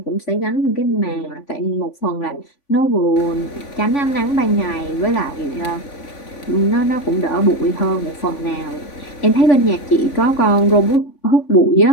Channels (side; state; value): right; late; 3.5 ms